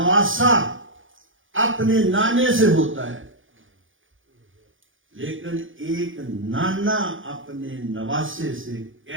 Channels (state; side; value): late; left; 0.57 ms